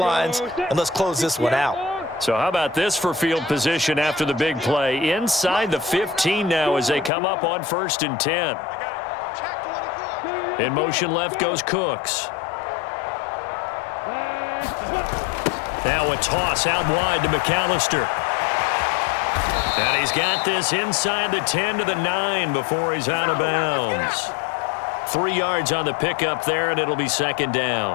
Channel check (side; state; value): right; drops out; at 7.1 s